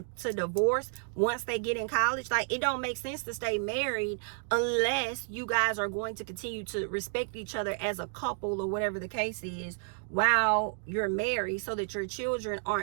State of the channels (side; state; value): left; silent; 56 dB below the other